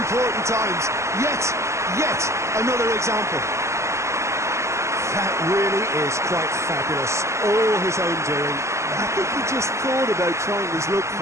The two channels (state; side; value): late; left; 0.14 ms